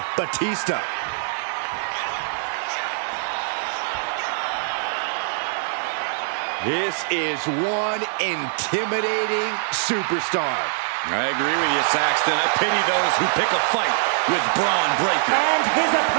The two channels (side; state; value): left; silent; digital silence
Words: Batista. This is one intimidating superstar. I agree with you, Saxton. I pity those who pick a fight with Braun Breaker. And his